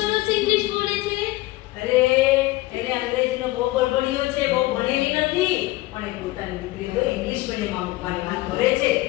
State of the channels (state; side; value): quieter; right; 19.3 dB